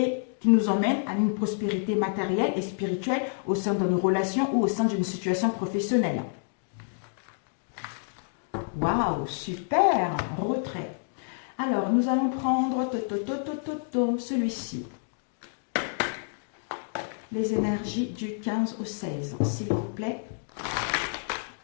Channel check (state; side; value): silent; right; digital silence